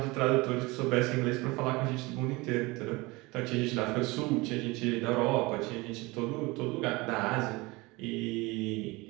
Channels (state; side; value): quieter; left; 23.5 dB